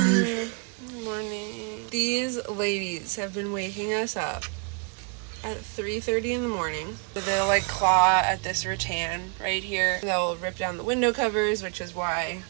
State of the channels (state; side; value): quieter; left; 36.6 dB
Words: Good morning. These ladies have been waking us up at 3:30 in the morning. They'll like claw at this rattan right here. They'll rip down the window covers, which is why